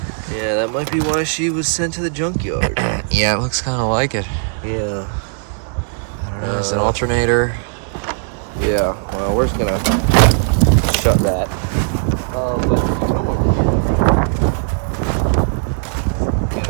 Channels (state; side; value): silent; left; 67 dB below the other